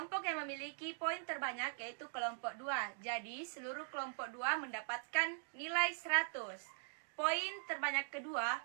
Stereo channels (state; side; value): silent; left; digital silence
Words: yang memiliki poin terbanyak yaitu kelompok 2. Jadi seluruh kelompok 2 mendapatkan nilai 100. Poin terbanyak kedua